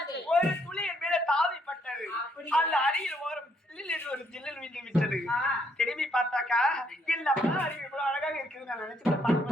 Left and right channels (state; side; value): normal; both; correlation 0.71